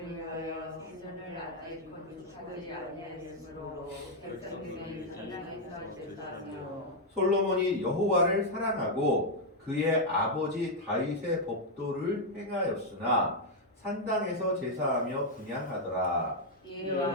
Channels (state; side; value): normal; both; correlation -0.01